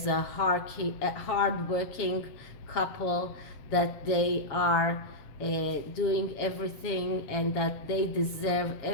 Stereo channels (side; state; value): right; late; 7.2 ms